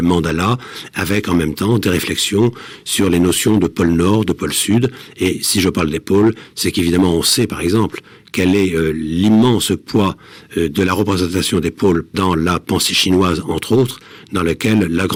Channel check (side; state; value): both; identical; correlation 1.00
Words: mandalas, avec en même temps des réflexions sur les notions de pôle nord, de pôle sud. Et si je parle des pôles, c'est qu'évidemment on sait, par exemple, quel est l'immense poids de la représentation des pôles dans la pensée chinoise, entre autres, dans lequel la